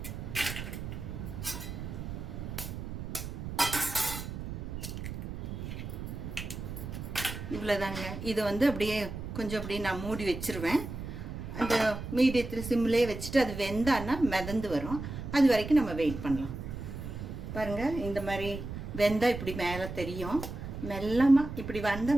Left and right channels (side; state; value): right; noise; rumble, 7 dB below the sound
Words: இவ்வளோதாங்க. இது அப்படியே கொஞ்சம் அப்படியே நான் மூடி வச்சுருவேன். அந்த மீடியத்தில் சிம்லேயே வச்சுட்டு அது வெந்தான்னா மிதந்து வரும். அது வரைக்கும் நம்ம வெயிட் பண்ணலாம். பாருங்கள், இந்த மாதிரி வெந்தம் இப்படி மேலே தெரியும். மெல்லமாக இப்படி வந்த